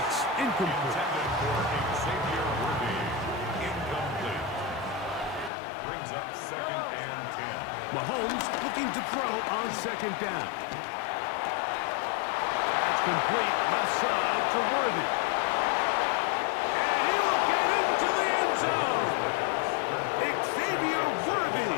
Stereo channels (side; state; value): right; drops out; at 5.5 s